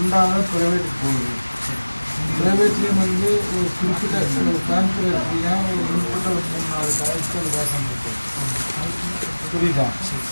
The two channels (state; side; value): inverted; both; correlation -1.00